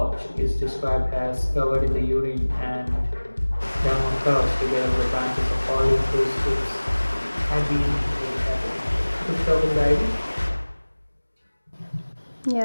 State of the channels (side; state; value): both; inverted; correlation -1.00